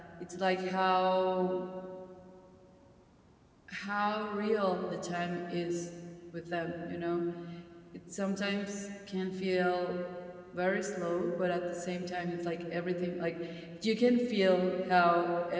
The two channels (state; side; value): identical; both; correlation 1.00